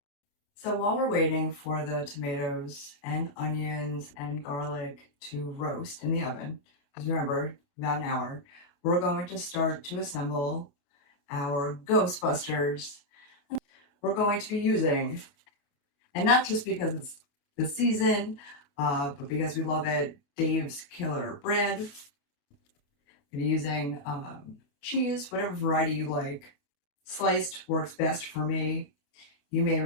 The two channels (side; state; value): right; late; 28 ms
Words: So while we're waiting for the tomatoes and onions and garlic to roast in the oven, because remember, about an hour, we're going to start to assemble our Ghostbusters. We're going to be using, and not just because it's the season, but because we love it, Dave's Killer Bread. I'm using cheese, whatever variety you like. Sliced works best for me. You may